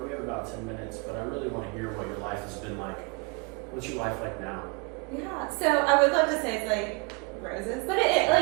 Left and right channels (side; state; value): left; quieter; 30.1 dB